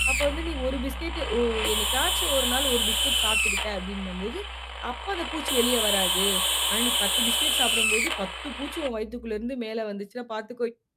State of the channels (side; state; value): both; identical; correlation 1.00